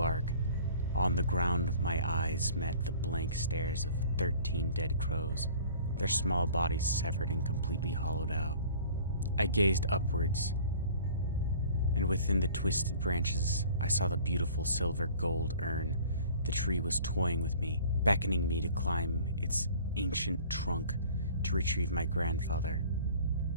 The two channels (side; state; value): both; inverted; correlation -0.48